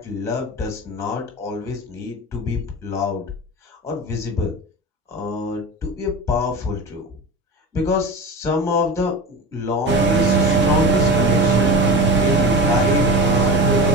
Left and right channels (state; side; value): normal; both; correlation 0.28